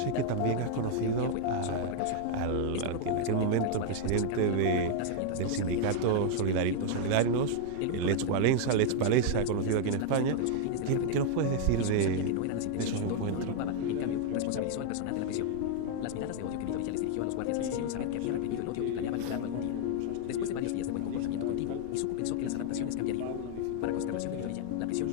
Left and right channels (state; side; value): different; both; correlation 0.00